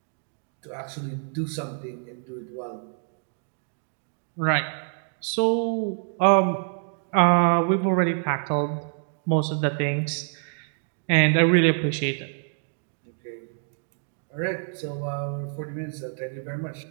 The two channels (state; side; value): silent; left; 61 dB below the other